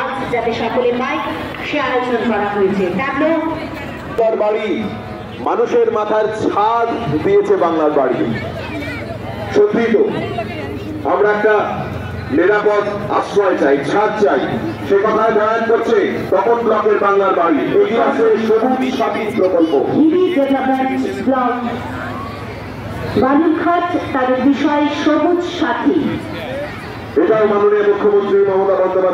যাতে সকলে পায় সে আয়োজন করা হয়েছে। বাড়ি মানুষের মাথার ছাদ দিয়েছে বাংলার বাড়ি। সত্যি তো আমরা একটা নিরাপদ আশ্রয় চাই, ছাদ চাই, সে কথায় বয়ান করছে তপন ব্লকের বাংলার বাড়ি। এগিয়ে আছে সবুজ সাথী প্রকল্প। বালুরঘাট তাদের বিষয় সবুজ সাথী। এটাও মাননীয় মুখ্যমন্ত্রী মমতা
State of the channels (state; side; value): identical; both; correlation 1.00